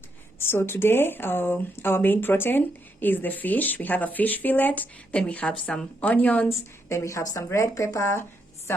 So today, our main protein is the fish. We have a fish fillet, then we have some onions, then we have some red pepper,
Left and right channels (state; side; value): normal; both; correlation 0.78